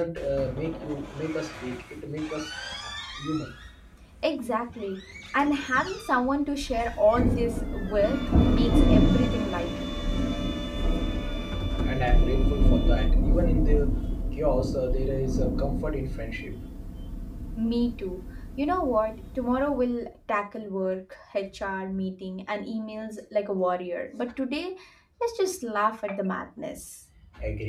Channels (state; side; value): identical; both; correlation 1.00